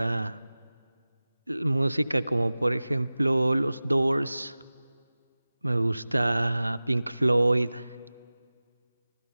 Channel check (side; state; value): both; inverted; correlation -0.98